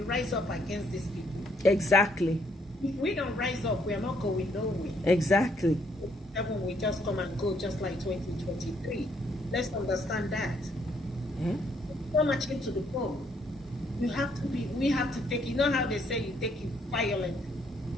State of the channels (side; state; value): both; normal; correlation 0.69